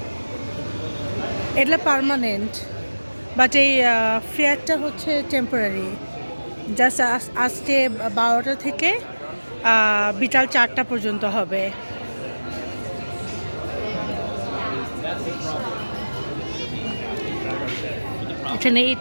এটা permanent, but এই ফেয়ারটা হচ্ছে temporary. Just আজকে 12টা থেকে বিকাল 4টা পর্যন্ত হবে। এখানে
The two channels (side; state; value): both; inverted; correlation -1.00